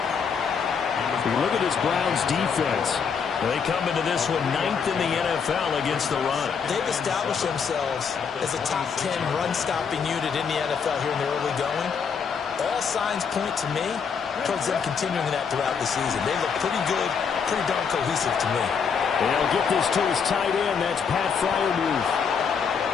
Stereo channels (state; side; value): quieter; right; 6.3 dB